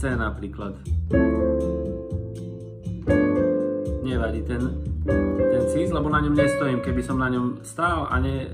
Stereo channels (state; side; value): identical; both; correlation 1.00